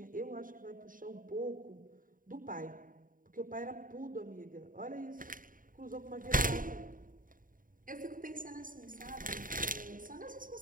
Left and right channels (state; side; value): late; left; 0.40 ms